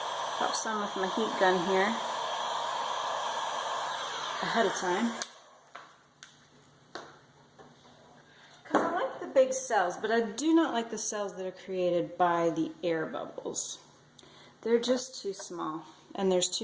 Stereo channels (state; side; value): identical; both; correlation 1.00